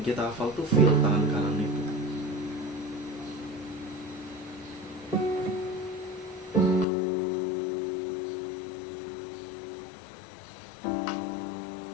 kita hafal tuh feel tangan kanan itu.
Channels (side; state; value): right; drops out; at 6.9 s